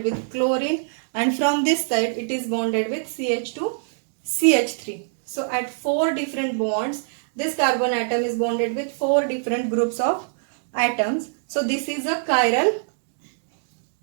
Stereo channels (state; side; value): silent; left; digital silence